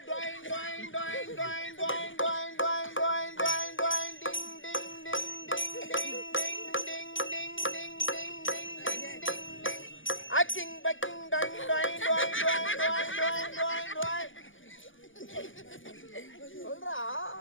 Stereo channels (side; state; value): right; late; 0.57 ms